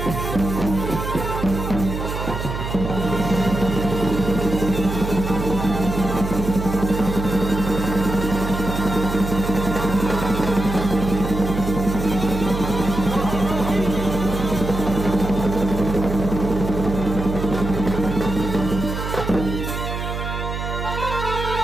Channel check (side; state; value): right; noise; hum, 5 dB below the sound